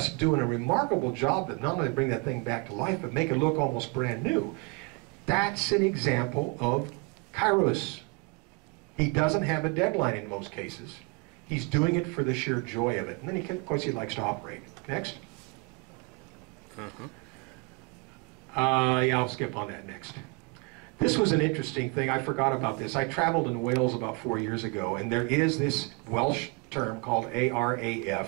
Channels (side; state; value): left; quieter; 29.4 dB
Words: doing a remarkable job that not only bring that thing back to life, but make it look almost brand new. That's an example of Kairos. He doesn't have a deadline in most cases. He's doing it for the sheer joy of it. And then, of course, he likes to operate. Next. Yeah, I'll skip on that next. This was an interesting thing. I forgot about this. I traveled in Wales about 4 years ago, and there is this Welsh term called